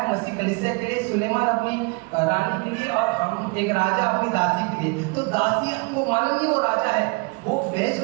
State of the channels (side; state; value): left; quieter; 30.2 dB